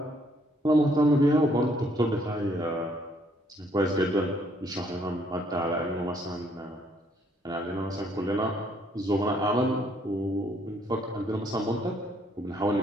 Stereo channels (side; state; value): both; normal; correlation 0.67